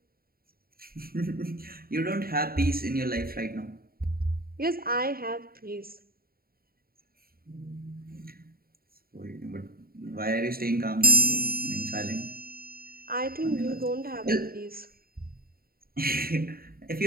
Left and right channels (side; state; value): left; late; 0.43 ms